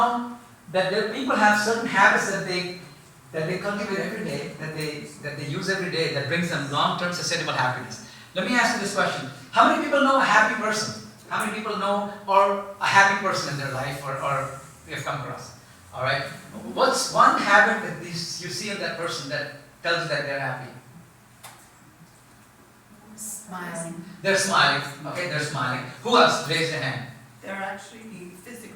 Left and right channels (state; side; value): identical; both; correlation 1.00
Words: that people have certain habits that they cultivate every day, that they use every day, that brings them long-term sustainable happiness. Let me ask you this question. How many people know a happy person? How many people know or a happy person in their life or you've come across? Alright? What's one habit that you see in that person that tells you that they're happy? Smiling. They're smiling. Okay, they're smiling. Who else? Raise your hand. They're actually